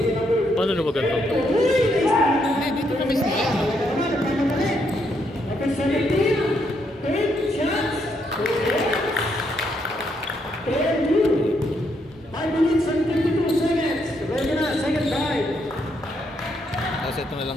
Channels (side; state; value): both; normal; correlation 0.76